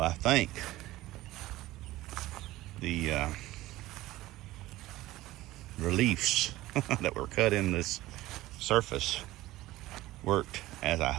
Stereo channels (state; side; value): quieter; left; 17.0 dB